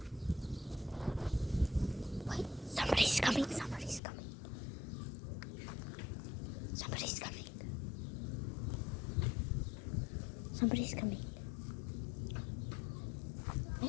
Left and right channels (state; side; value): drops out; right; at 4.0 s